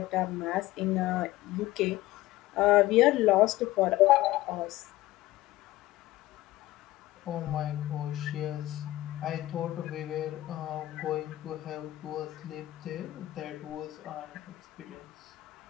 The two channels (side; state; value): right; quieter; 16.8 dB